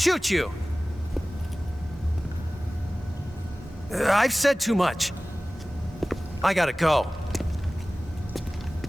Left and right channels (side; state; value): both; normal; correlation 0.98